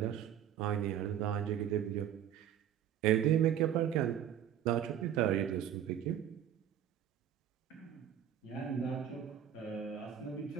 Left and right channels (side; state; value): left; quieter; 10.0 dB